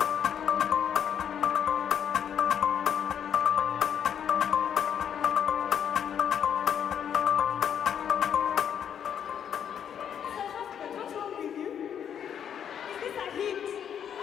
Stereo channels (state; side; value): quieter; right; 8.7 dB